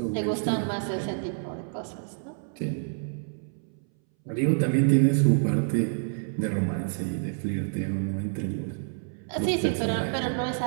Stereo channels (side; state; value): left; silent; 60 dB below the other